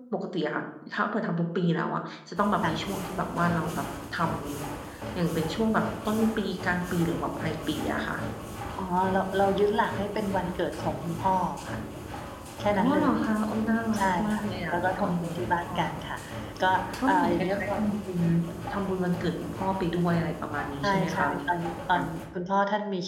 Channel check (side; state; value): both; identical; correlation 1.00